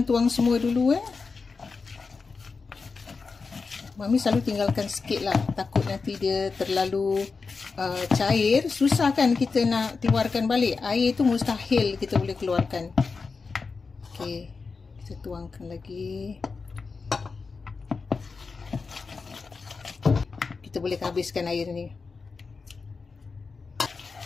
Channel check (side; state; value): right; quieter; 4.6 dB